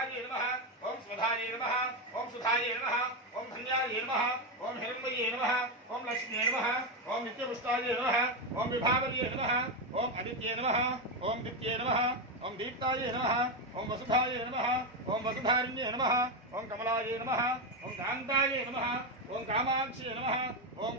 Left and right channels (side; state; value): both; normal; correlation 0.09